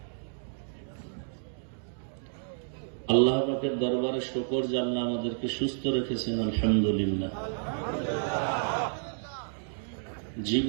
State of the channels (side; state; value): left; silent; digital silence